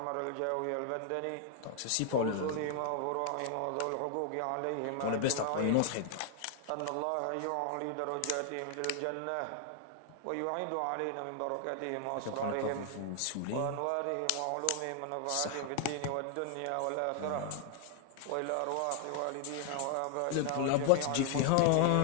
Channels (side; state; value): both; different; correlation 0.00